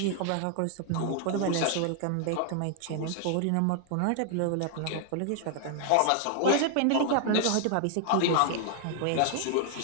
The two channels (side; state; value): both; different; correlation 0.00